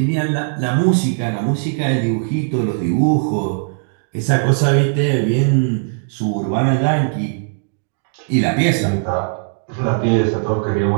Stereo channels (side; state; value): left; silent; 67 dB below the other